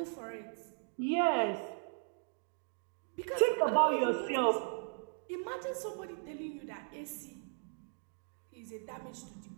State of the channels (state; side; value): silent; left; 53 dB below the other